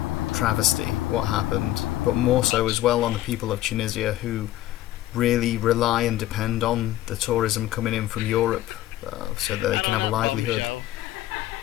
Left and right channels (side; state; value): right; quieter; 14.7 dB